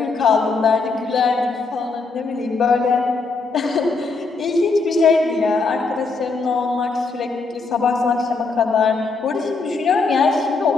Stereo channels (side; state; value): right; quieter; 4.1 dB